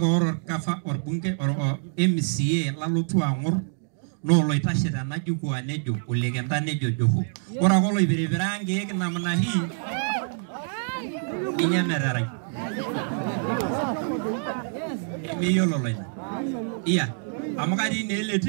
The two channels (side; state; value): left; silent; digital silence